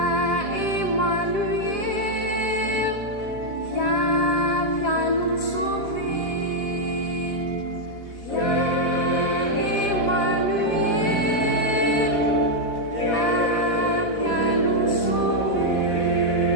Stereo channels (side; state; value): right; late; 4.1 ms